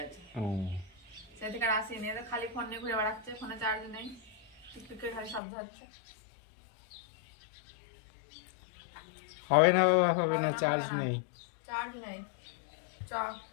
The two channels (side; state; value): right; drops out; at 5.4 s